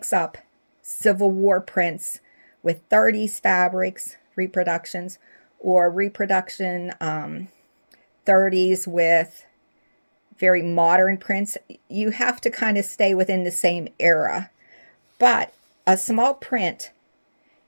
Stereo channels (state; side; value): inverted; both; correlation -1.00